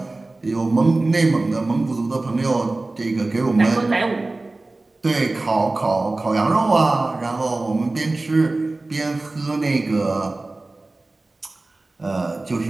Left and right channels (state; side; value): quieter; left; 3.1 dB